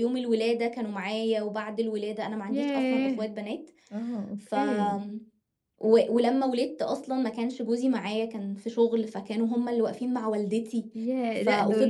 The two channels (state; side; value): identical; both; correlation 1.00